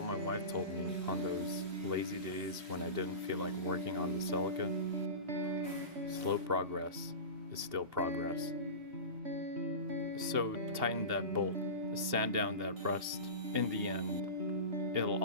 my wife told me on those lazy days when I didn't feel like working on the Celica, slow progress is still progress. So tighten that bolt, sand down that rust. In the end, it'll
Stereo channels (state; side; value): late; left; 2.8 ms